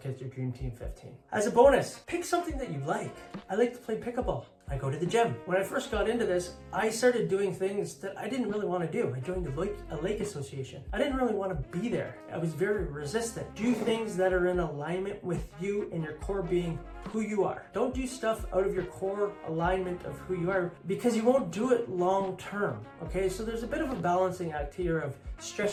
your Dream Team 15. As a bonus, pick something that you like. I like to play pickleball. I go to the gym. When I first got into this, I started doing things that I didn't really want to do. I joined a lake association. I didn't really want to be there. I was very resistant. Do things that are in alignment with you and your core being who you are. Don't do stuff out of your core alignment of who you are, because you won't do it long term, okay? So there's a bit of a balancing act here of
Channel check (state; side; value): identical; both; correlation 1.00